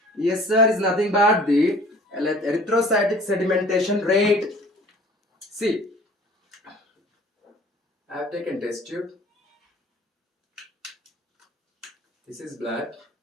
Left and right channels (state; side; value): normal; both; correlation 0.49